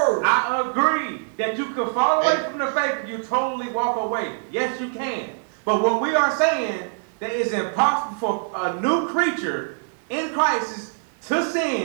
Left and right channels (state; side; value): silent; left; digital silence